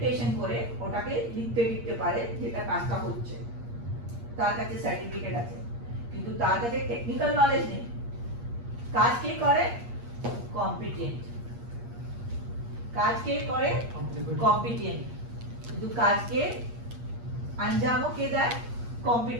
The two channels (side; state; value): left; late; 8.5 ms